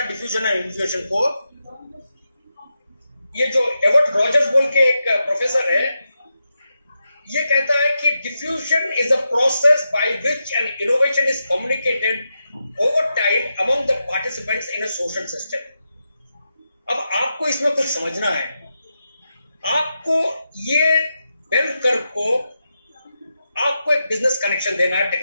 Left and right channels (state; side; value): inverted; both; correlation -0.87